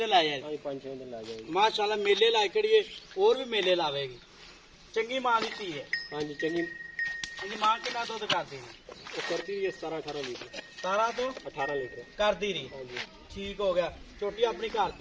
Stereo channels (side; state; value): both; identical; correlation 1.00